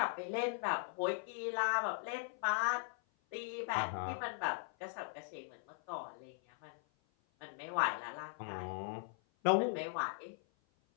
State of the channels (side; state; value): right; silent; 51 dB below the other